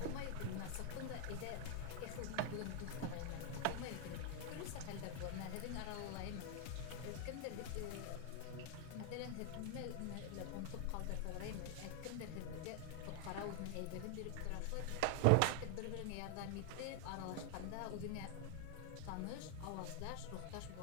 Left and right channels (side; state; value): both; different; correlation 0.00